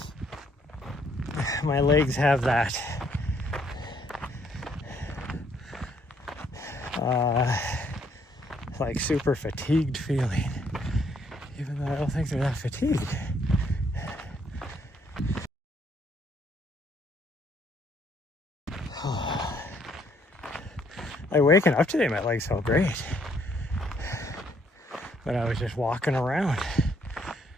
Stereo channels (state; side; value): normal; both; correlation 0.68